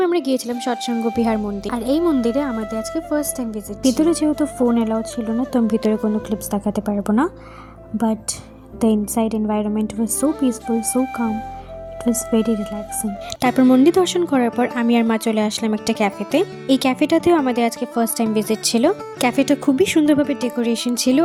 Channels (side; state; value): both; identical; correlation 1.00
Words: আমরা গিয়েছিলাম সৎসঙ্গ বিহার মন্দির, আর এই মন্দিরে আমাদের আজকে ফার্স্ট টাইম ভিজিট। ভিতরে যেহেতু ফোন অ্যালাউড ছিল না, তো আমি ভিতরে কোনো ক্লিপস দেখাতে পারবো না, but the inside environment was so peaceful, so calm, it was very relaxing. তারপর মন্দির দর্শন করার পর আমি আর মা চলে আসলাম একটা ক্যাফেতে। এই ক্যাফেটাতেও আমাদের আজকে ফার্স্ট টাইম ভিজিট ছিল। ক্যাফেটা খুবই সুন্দরভাবে ডেকোরেশন ছিল